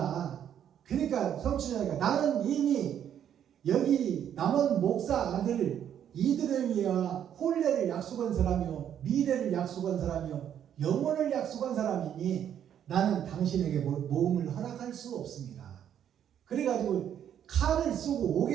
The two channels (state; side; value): quieter; left; 9.6 dB